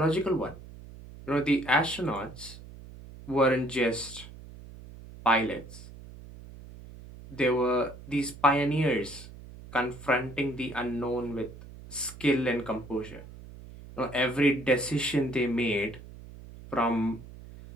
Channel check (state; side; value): noise; right; hum, 16 dB below the sound